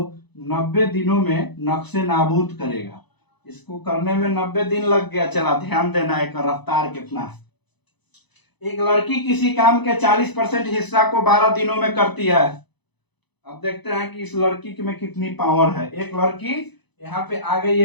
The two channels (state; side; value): late; right; 0.99 ms